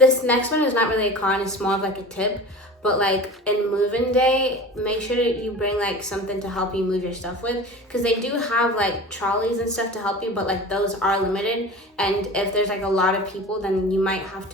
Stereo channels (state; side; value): normal; both; correlation 0.36